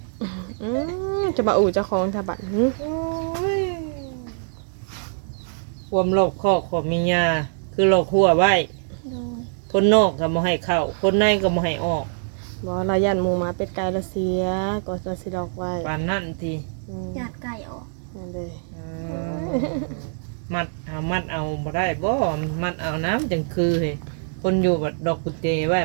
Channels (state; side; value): silent; left; digital silence